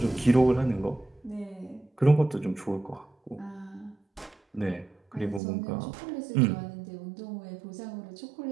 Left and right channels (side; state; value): left; drops out; at 5.4 s